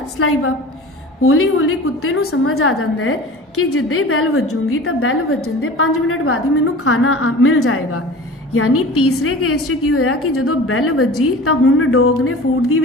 ਸਲਾਈਵਾ। ਹੌਲੀ ਹੌਲੀ ਕੁੱਤੇ ਨੂੰ ਸਮਝ ਆ ਜਾਂਦਾ ਹੈ कि जिद्दे ही बैल वजूंगी तो बैल वजन के 5 मिनट बाद ही मैनू खाना मिल जाएगा। यानी तीसरे केस च की होया कि जो बैल वजी तो हुण डॉग ने फूड की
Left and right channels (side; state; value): both; normal; correlation 0.38